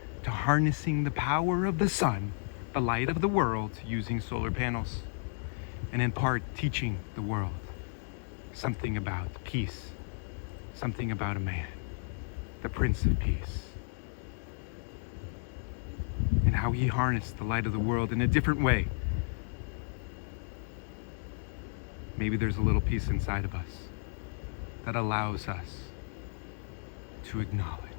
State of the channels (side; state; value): right; silent; digital silence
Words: to harnessing the power of the sun, the light of the world, using solar panels, and in part teaching the world something about peace, something about a man, the Prince of Peace, and how he harnessed the light of the world in a different way. Maybe there's a little piece inside of us that allows us to acknowledge